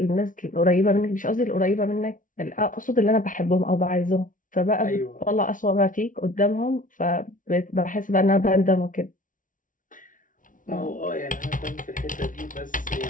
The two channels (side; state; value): right; late; 0.38 ms